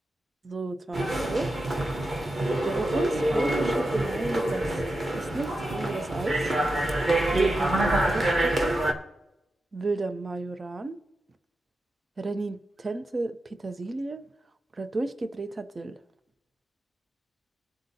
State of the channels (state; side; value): normal; both; correlation 0.89